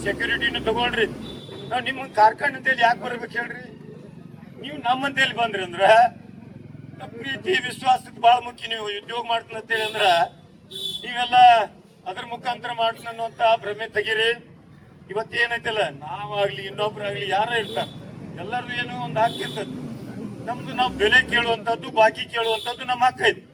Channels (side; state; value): both; identical; correlation 1.00